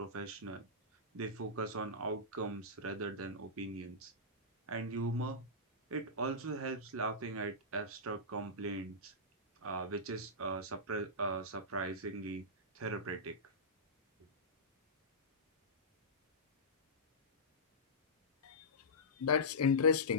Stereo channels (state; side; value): normal; both; correlation -0.16